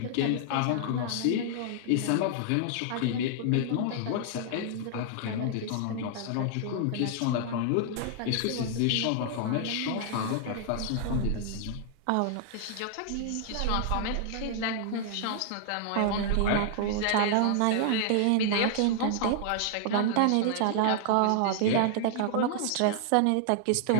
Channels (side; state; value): both; different; correlation -0.01